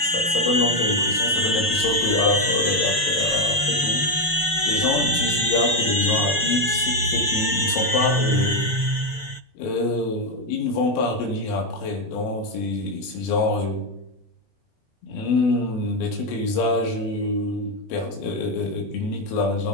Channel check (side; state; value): right; late; 6.6 ms